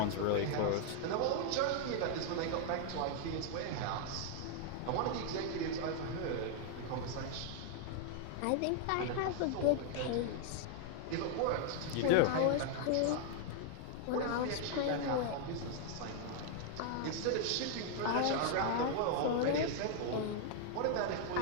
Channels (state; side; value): different; both; correlation 0.00